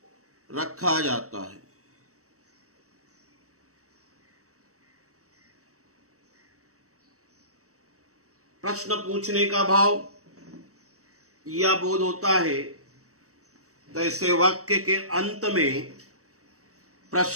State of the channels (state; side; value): late; left; 0.65 ms